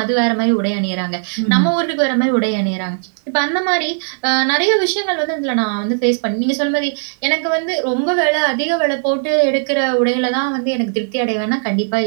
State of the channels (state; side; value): silent; left; digital silence